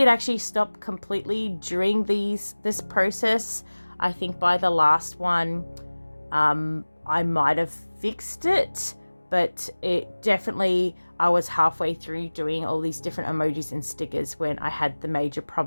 actually stop completely during this process. I think by the last one, I might have fixed it, but it definitely, I was halfway through doing all these different emojis and stickers when I had the major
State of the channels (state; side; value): inverted; both; correlation -1.00